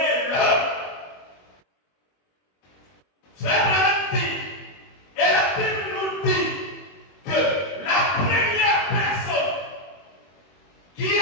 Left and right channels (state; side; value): late; right; 21 ms